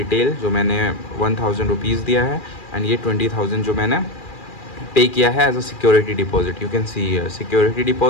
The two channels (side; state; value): right; late; 2.4 ms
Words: जो मैंने 1,000 रुपीज़ दिया है एंड ये 20,000 जो मैंने पे किया है as a security deposit. You can see security